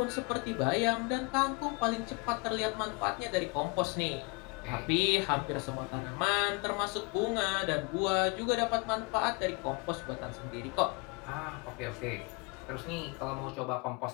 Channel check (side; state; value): right; quieter; 30.0 dB